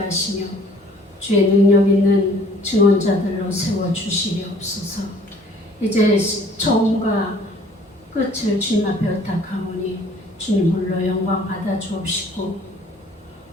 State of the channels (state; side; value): normal; both; correlation 0.55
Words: 주의 능력 있는 증언자들로 세워주시리옵소서. 이제 처음과 끝을 주님 앞에 의탁하오니 주님 홀로 영광 받아 주옵시고